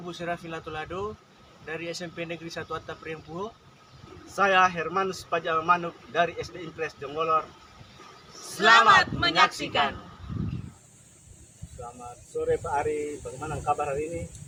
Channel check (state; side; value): identical; both; correlation 1.00